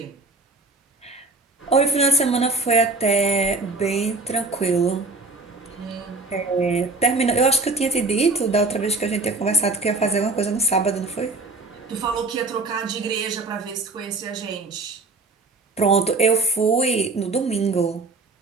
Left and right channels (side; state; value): left; quieter; 3.5 dB